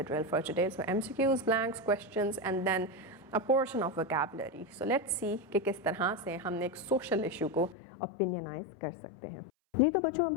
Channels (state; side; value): drops out; right; at 7.8 s